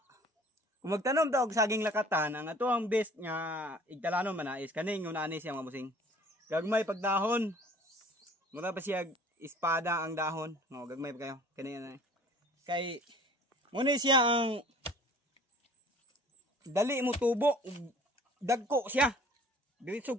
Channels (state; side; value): normal; both; correlation 0.50